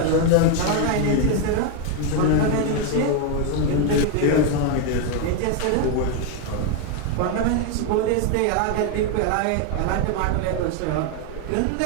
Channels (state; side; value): different; both; correlation 0.01